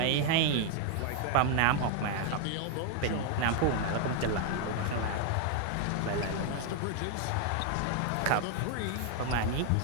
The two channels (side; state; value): both; different; correlation 0.01